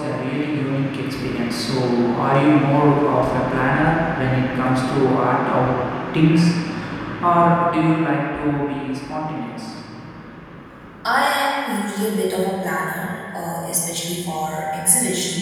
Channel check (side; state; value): both; identical; correlation 1.00